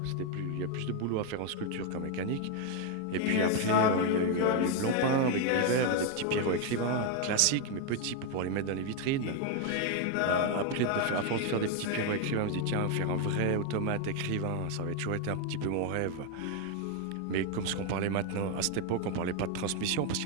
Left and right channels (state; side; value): different; both; correlation 0.01